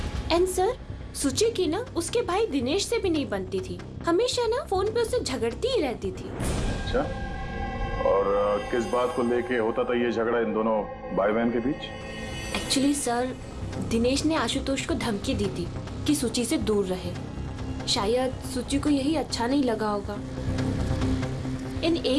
एंड सर सूची की ना उसके भाई दिनेश से भी नहीं बनती थी, हमेशा ना फोन पे उससे झगड़ती ही रहती थी। अच्छा, और किस बात को लेके होता था ये झगड़ा इन दोनों भाई बहन के बीच? एक्चुअली सर दिनेश ने आशुतोष को धमकी दी थी कि सूची से दूर रहे, शायद सूची को यही अच्छा नहीं लगा होगा। इन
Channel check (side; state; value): both; identical; correlation 1.00